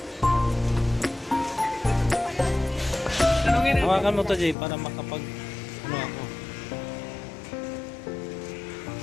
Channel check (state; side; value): drops out; right; at 4.5 s